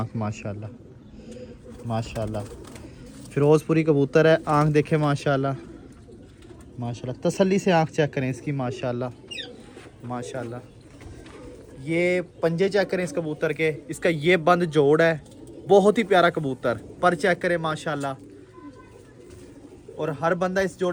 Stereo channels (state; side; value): identical; both; correlation 1.00